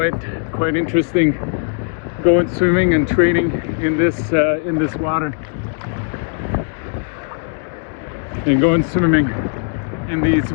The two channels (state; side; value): silent; right; 59 dB below the other